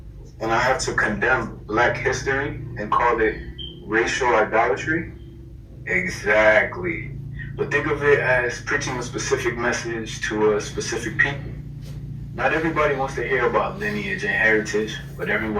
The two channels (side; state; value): both; identical; correlation 1.00